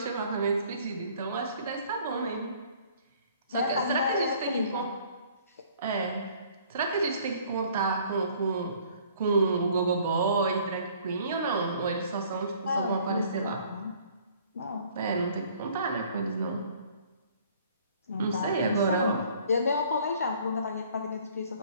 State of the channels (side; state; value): both; inverted; correlation -0.56